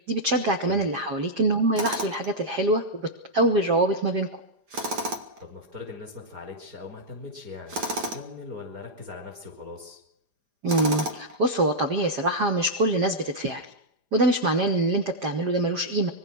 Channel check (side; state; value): left; late; 4.9 ms